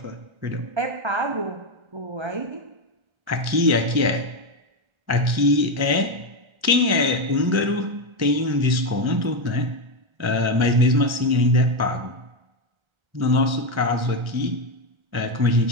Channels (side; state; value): left; late; 1.3 ms